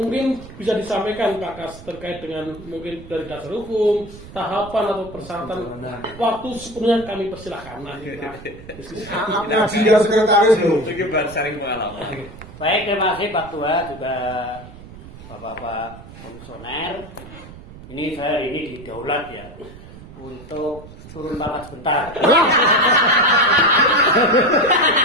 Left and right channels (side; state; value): right; noise; rumble, 17 dB below the sound